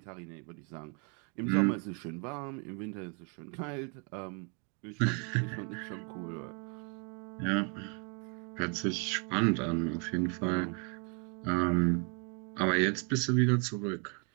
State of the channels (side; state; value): left; quieter; 37.2 dB